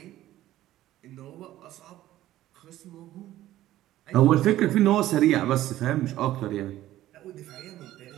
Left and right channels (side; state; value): left; quieter; 14.4 dB